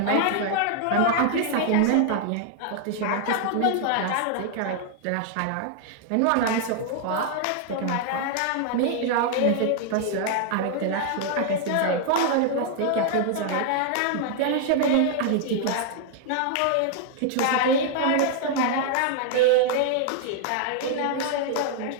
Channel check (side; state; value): both; different; correlation 0.00